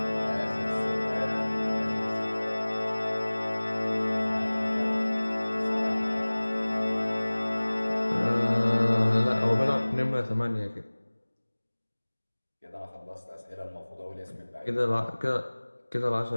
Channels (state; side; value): inverted; both; correlation -1.00